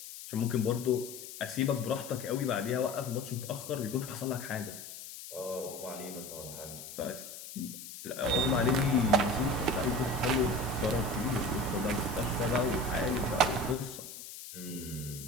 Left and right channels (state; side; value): noise; left; hiss, 12 dB below the sound